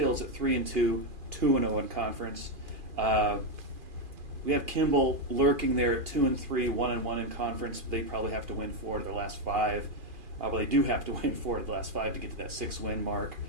at 3-2, 2-0 in conference. We have Kimball lurking there at 2-3, 1-1 in conference. They probably have to win 4 of their last 5. Well, they do have to win 4 of the last 5 to get to that 6-win mark.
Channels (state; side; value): late; left; 2.4 ms